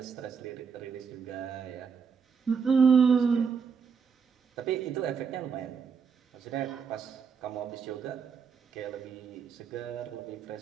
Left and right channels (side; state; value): left; quieter; 6.1 dB